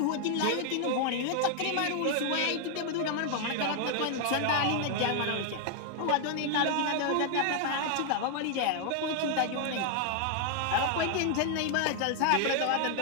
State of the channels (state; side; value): different; both; correlation 0.00